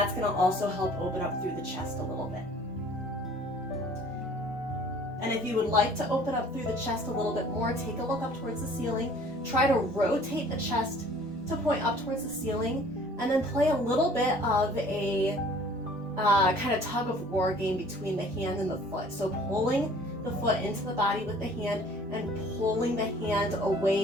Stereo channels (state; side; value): normal; both; correlation 0.52